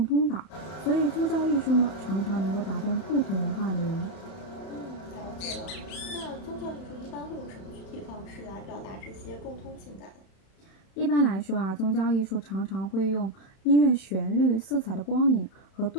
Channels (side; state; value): right; late; 31 ms